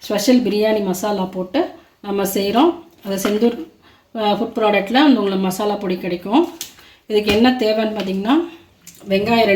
ஸ்பெஷல் பிரியாணி மசாலா போட்டு நம்ம செய்கிறோம். அது செந்தூர் ஃபுட் ப்ராடக்டில் உங்களுக்கு மசாலா பொடி கிடைக்கும். இதுக்கு என்ன தேவைன்னு பார்த்திங்கன்னா, வெங்காயம்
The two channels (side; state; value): both; identical; correlation 1.00